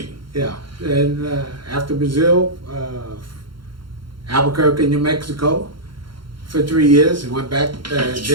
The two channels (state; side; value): late; left; 0.73 ms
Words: Yeah, and after Brazil, Albuquerque, New Mexico, for 3 years. I went back,